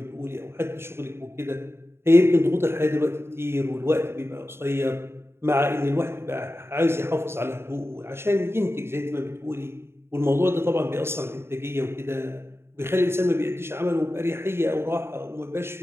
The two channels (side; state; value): left; late; 0.12 ms